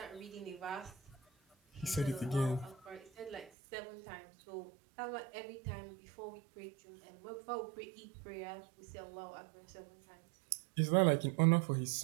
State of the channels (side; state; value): left; drops out; at 3.5 s